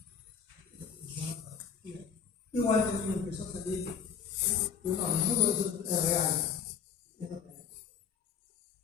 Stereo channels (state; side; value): quieter; right; 6.9 dB